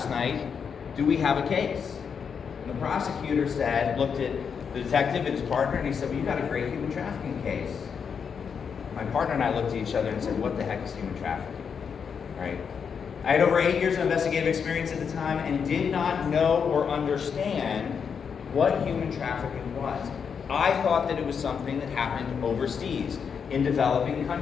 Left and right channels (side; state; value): right; quieter; 6.6 dB